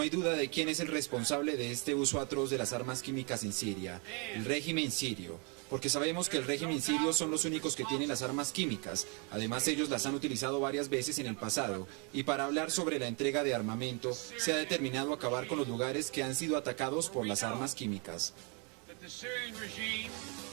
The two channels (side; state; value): left; quieter; 34.3 dB